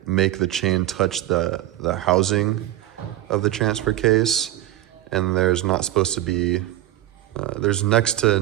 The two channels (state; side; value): quieter; left; 14.3 dB